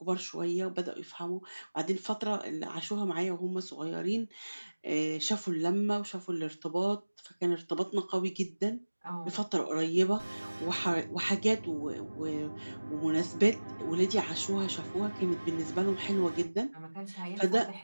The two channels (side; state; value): both; inverted; correlation -1.00